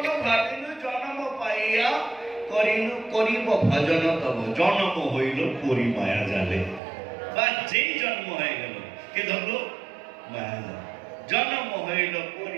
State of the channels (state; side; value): drops out; left; at 6.8 s